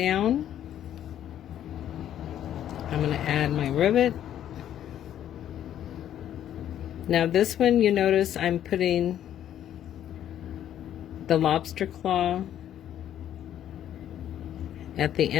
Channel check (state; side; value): quieter; right; 10.9 dB